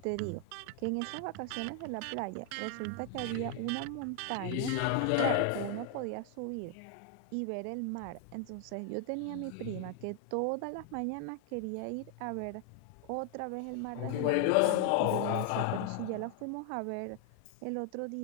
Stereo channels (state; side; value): different; both; correlation 0.00